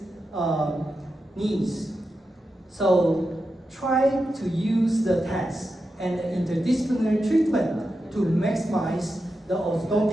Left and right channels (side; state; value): both; normal; correlation 0.89